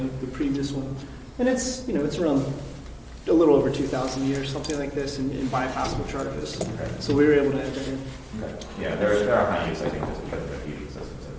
the previous one. And it's, you know, it's around a little over 2,000 a year, something like this, in bypassable charges. Okay. So we were able to add that in. Okay. Yeah, there are high use, I think, just because of the heating systems that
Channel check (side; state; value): both; identical; correlation 1.00